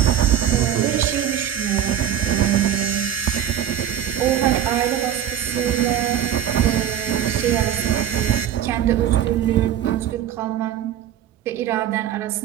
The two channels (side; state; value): left; quieter; 10.2 dB